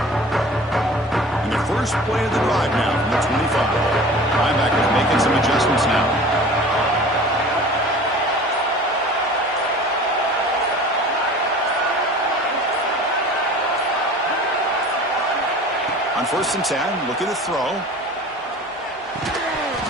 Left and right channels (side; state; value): both; normal; correlation 0.42